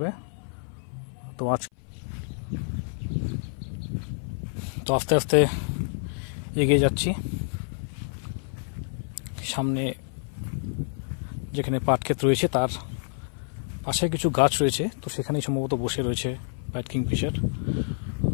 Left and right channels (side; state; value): right; silent; 57 dB below the other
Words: তো আস্তে আস্তে এগিয়ে যাচ্ছি। সামনে যেখানে পাট ক্ষেত রয়েছে তার পাশে কিছু গাছ রয়েছে, তো সেখানেই সম্ভবত বসে রয়েছে হোয়াইট কিংফিশার।